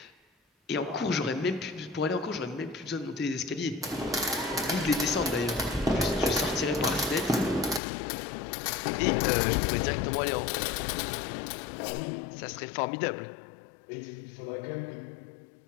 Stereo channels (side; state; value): right; drops out; at 7.8 s